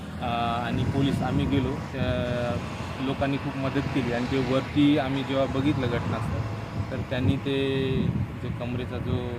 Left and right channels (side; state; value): both; identical; correlation 1.00